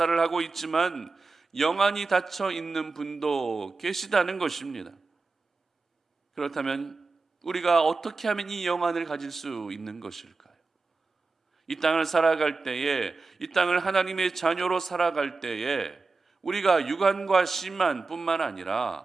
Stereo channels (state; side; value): quieter; left; 4.0 dB